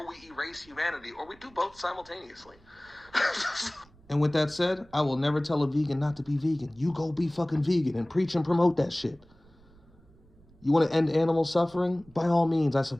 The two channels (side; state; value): right; noise; rumble, 27 dB below the sound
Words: we erase humanity, or we do both simultaneously. And with that said, I will never tell a vegan not to be vegan. You go be fucking vegan and preach and promote that shit. You want to end animal suffering? By all means, I